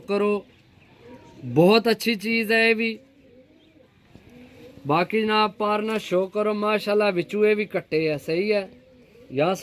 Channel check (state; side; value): identical; both; correlation 1.00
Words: करो बहुत अच्छी चीज़ है ये भी। बाकी जनाब पारना शो करो माशाल्लाह। बिचू ये भी कट्टे है सही है। यहाँ